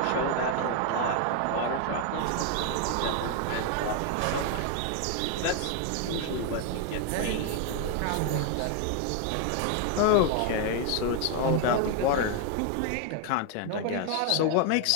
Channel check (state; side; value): different; both; correlation 0.01